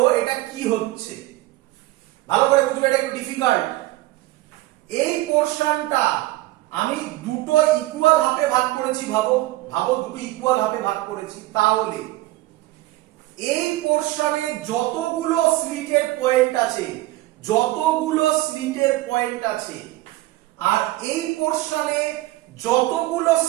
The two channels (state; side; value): quieter; left; 17.9 dB